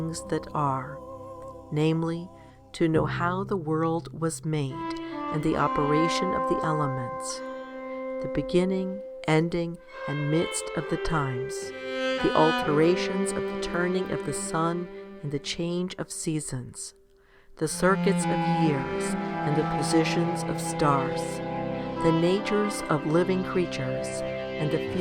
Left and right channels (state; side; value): identical; both; correlation 1.00